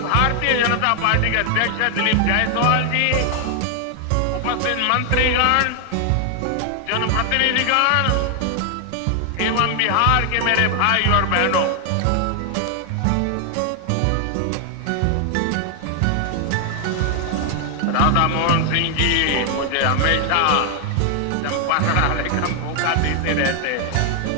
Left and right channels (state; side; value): different; both; correlation 0.00